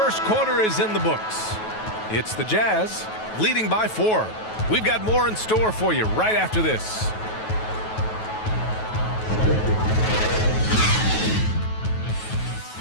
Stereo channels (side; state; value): right; late; 9.3 ms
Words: quarter is in the books. It's the Jazz leading by 4. We've got more in store for you right after this.